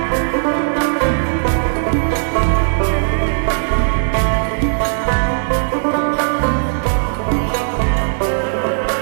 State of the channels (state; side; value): silent; left; 63 dB below the other